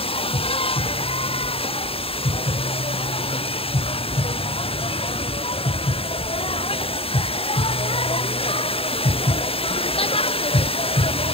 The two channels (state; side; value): late; right; 0.27 ms